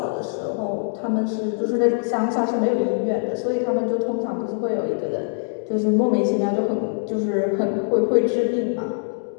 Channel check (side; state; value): right; silent; digital silence